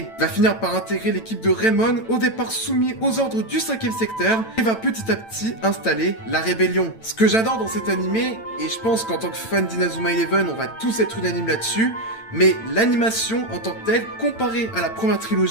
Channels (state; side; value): late; right; 8.9 ms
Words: Il va finir par intégrer l'équipe de Raymond, au départ soumis aux ordres du 5ème secteur, et va petit à petit installer la rébellion. Ce que j'adore dans cet animé, et je pense qu'en tant que fan d'Inazuma Eleven, on va tous être unanimes là-dessus, mais l'animation en tant que telle, comparée à la première